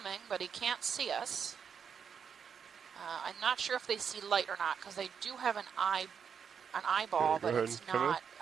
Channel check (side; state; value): left; quieter; 7.0 dB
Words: but he can't see us. I'm not sure if they see light or not, because they do have an eyeball, Okay, go but ahead it's and come in. not